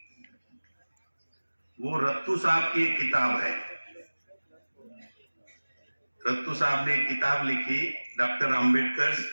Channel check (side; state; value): both; inverted; correlation -1.00